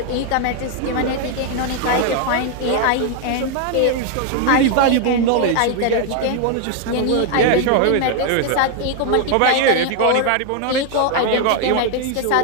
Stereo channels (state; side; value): different; both; correlation 0.00